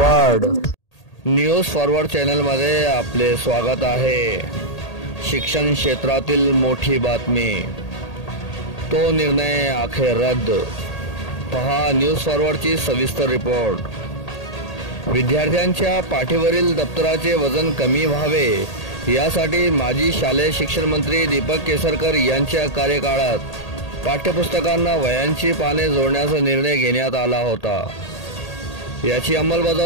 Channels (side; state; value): right; late; 1.8 ms